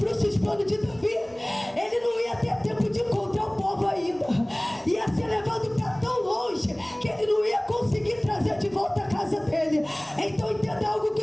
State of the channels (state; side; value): noise; left; hum, 28 dB below the sound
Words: os planos de Davi, ele não ia ter tempo de encontrar o povo ainda. Ia ser levado para tão longe que ele não ia conseguir trazer de volta a casa dele. Então entenda algo